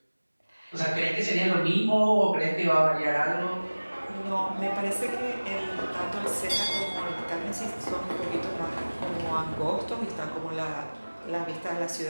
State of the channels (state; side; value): inverted; both; correlation -1.00